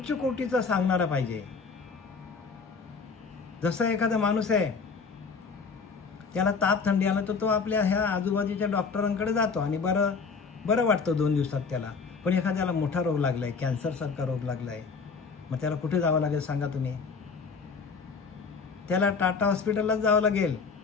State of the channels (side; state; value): right; quieter; 5.1 dB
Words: कोटीचं सांगणारा पाहिजे. जसं एखादा माणूस आहे, त्याला ताप थंडी आला तर तो आपल्या ह्या आजूबाजूच्या डॉक्टरांकडे जातो आणि बरं वाटतं 2 दिवसात त्याला. पण एखाद्याला मोठा रोग लागलाय, कॅन्सरसारखा रोग लागलाय, मग त्याला कुठे जावं लागेल सांगा तुम्ही? त्याला टाटा हॉस्पिटललाच जावं लागेल.